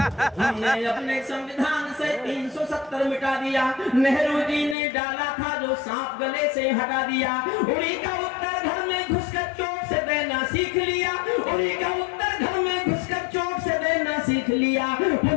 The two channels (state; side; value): drops out; right; at 4.8 s